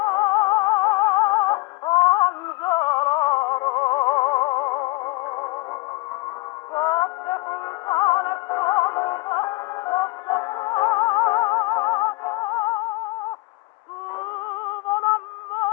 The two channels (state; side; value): quieter; right; 23.3 dB